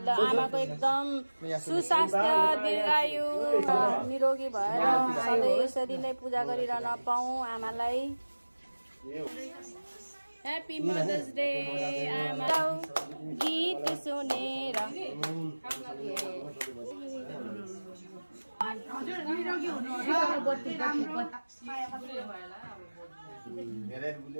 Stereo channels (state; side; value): inverted; both; correlation -1.00